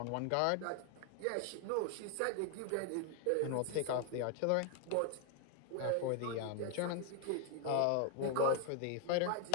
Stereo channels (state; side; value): different; both; correlation 0.01